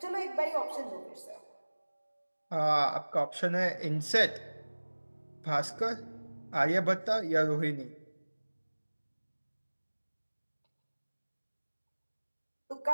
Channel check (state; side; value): inverted; both; correlation -1.00